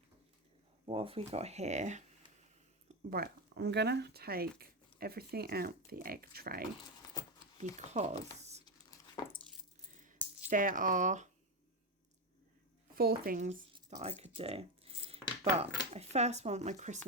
What have we got here? Right, I'm going to take everything out the egg tray because there are 4 things that I could do. But I first want my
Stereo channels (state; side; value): normal; both; correlation 0.12